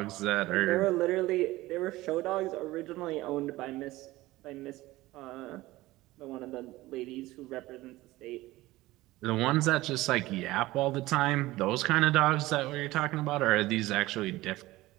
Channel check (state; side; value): quieter; left; 18.2 dB